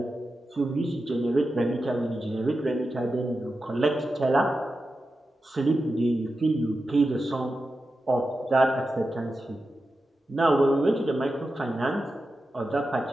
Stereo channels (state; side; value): normal; both; correlation 0.91